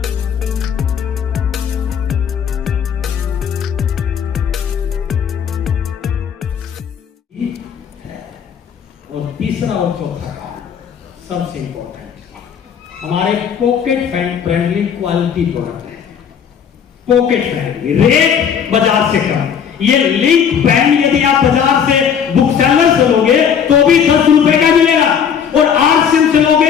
तीसरा और चौथा सबसे इंपॉर्टेंट, हमारे पॉकेट फ्रेंडली क्वालिटी प्रोडक्ट है। पॉकेट फ्रेंडली, रेट बाजार से कम। ये लिंक पेन यदि आप बाजार से बुक सेलर से लोगे तो भी 10 रुपए का मिलेगा, और आरसीएम से लोगे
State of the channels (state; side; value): quieter; right; 7.7 dB